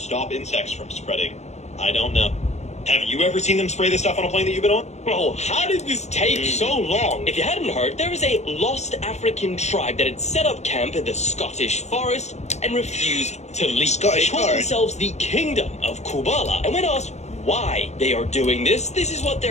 insects from spreading? I don't know. Have you ever seen them spray this stuff on a plane that you've been on? Bro, how did this take so long? If you hadn't heard, there was a lost African tribe that had set up camp in the Scottish forest and refused to leave. Scottish They called forest? themselves the Kingdom of Kubala. And when asked why they are doing this. This is what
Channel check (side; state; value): right; late; 0.33 ms